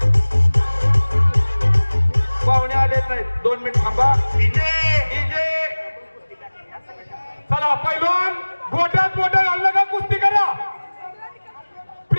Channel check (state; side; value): inverted; both; correlation -1.00